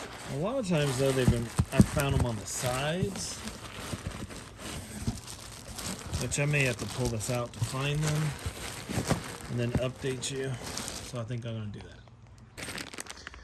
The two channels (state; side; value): identical; both; correlation 1.00